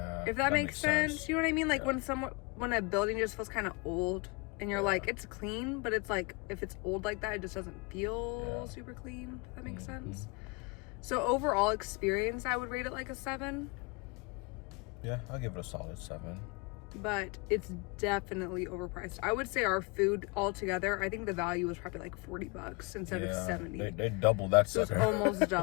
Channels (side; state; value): right; quieter; 29.1 dB